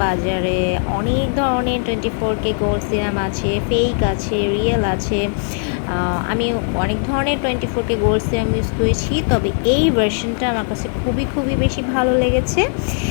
বাজারে অনেক ধরনের 24K গোল্ড সিরাম আছে, ফেক আছে, রিয়েল আছে। আমি অনেক ধরনের 24K গোল্ড সিরাম ইউজ করেছি, তবে এই ভার্সনটা আমার কাছে খুবই বেশি ভালো লেগেছে।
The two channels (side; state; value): right; silent; 59 dB below the other